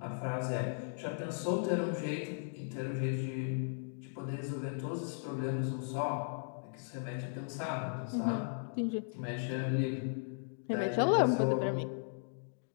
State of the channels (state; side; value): silent; right; digital silence